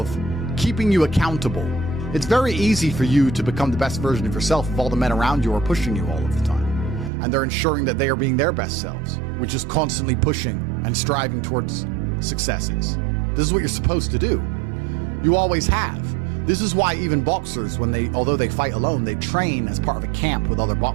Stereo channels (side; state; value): left; drops out; at 7.1 s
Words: keeping you accountable. It's very easy for you to become the best version of yourself if all the men around you are pushing you all of the time. And they're ensuring that they are being their best selves, which is constantly pushing and striving towards successes. This is what you're supposed to do. You always have. This is why even boxers, although they fight alone, they train as part of a camp with other